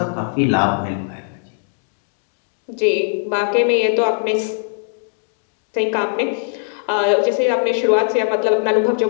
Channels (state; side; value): silent; right; digital silence